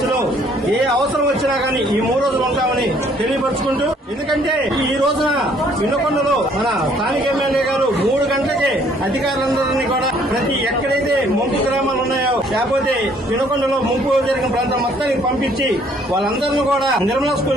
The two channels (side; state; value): both; normal; correlation 0.62